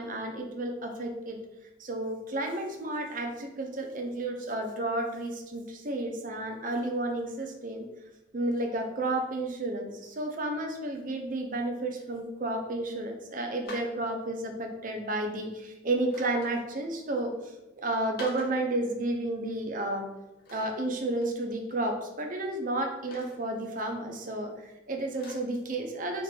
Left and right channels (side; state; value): both; normal; correlation 0.23